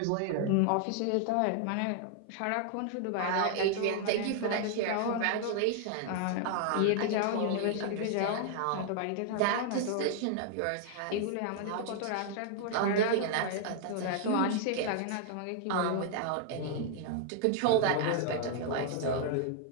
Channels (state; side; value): different; both; correlation 0.00